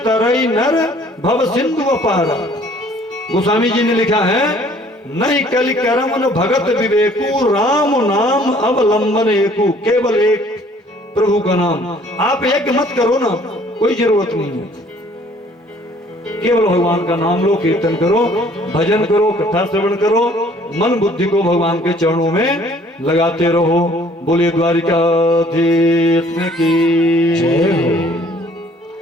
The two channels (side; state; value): both; normal; correlation 0.57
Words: तरई नर भव सिंधु अपारा। गोस्वामी जी ने लिखा है, नहीं कलि करम न भगत विवेकु, राम नाम अवलंबन एकु। केवल एक प्रभु का नाम, आप एक मत करो ना, कोई जरूरत नहीं है। केवल भगवान का नाम लो, कीर्तन करो, भजन करो, कथा श्रवण करो, मन बुद्धि को भगवान के चरणों में लगाते रहो। बोलिए द्वारिकाधीश की जय हो।